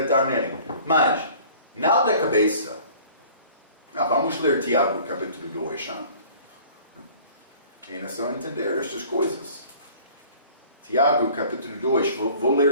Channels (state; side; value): inverted; both; correlation -0.49